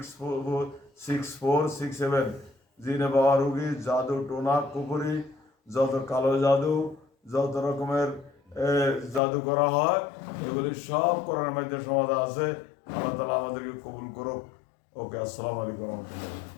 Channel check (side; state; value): right; drops out; at 9.2 s